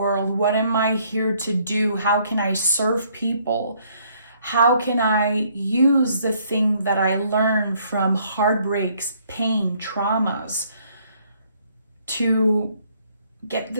What am I here to do? How can I serve people? How can I use the thing that I learned from heartbreaks, pain, traumas to get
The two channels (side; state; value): both; inverted; correlation -0.65